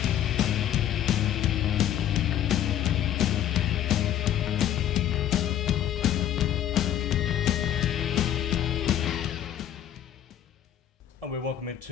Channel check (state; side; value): quieter; right; 11.0 dB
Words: And we're welcome